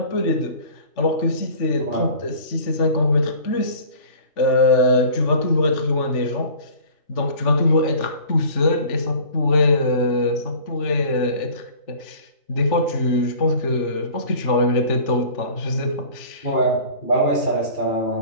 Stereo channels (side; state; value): right; late; 3.4 ms